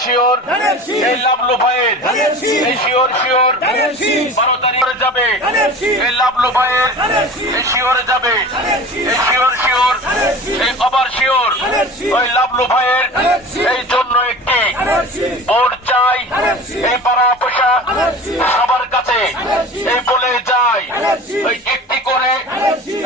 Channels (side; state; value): both; normal; correlation 0.37